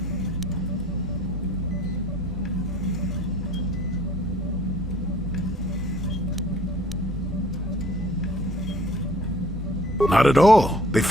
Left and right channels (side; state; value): both; normal; correlation 0.54